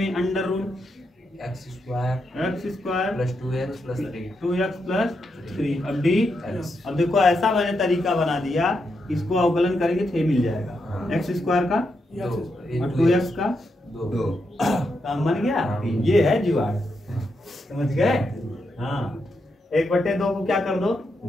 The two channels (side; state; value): both; normal; correlation 0.83